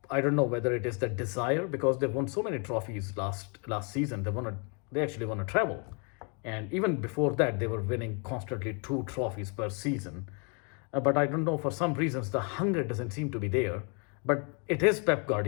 don't know whether it is the desire, because they won so many trophies last season. They actually won a treble. And even before that, they were winning constantly 2 trophies per season. But I don't know, for some reasons, the hunger doesn't seem to be there. But it is Pep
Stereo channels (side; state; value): right; quieter; 36.4 dB